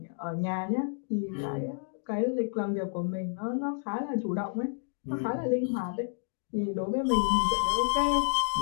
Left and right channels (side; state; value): right; silent; 58 dB below the other